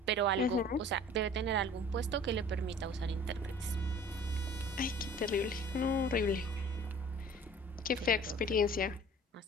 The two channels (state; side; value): normal; both; correlation 0.47